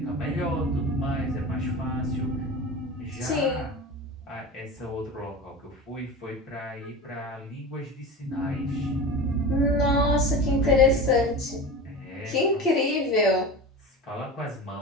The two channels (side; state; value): both; normal; correlation 0.30